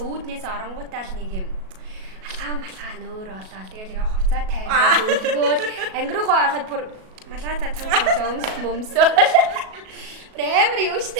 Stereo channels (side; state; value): left; late; 37 ms